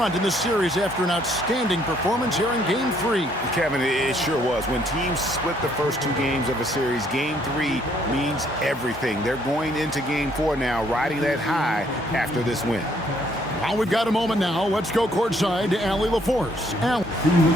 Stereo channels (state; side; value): normal; both; correlation 0.66